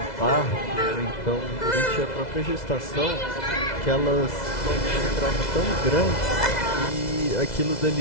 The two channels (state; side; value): late; right; 2.0 ms